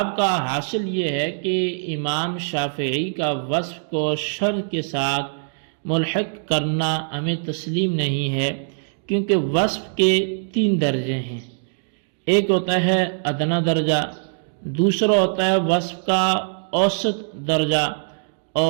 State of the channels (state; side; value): silent; left; digital silence